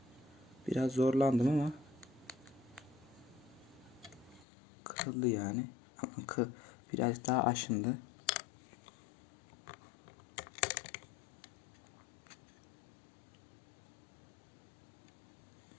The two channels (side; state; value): right; drops out; at 4.5 s